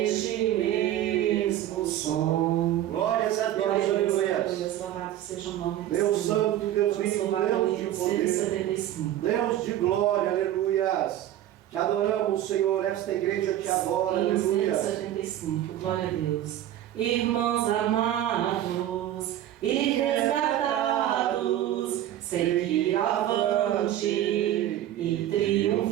175. Deus de glória, aleluias. Te adoramos, Senhor. Esta igreja te adora, Hino aleluia. 175. Glória a Deus. Irmãos amados e resgatados, seguir avante e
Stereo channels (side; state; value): left; quieter; 12.4 dB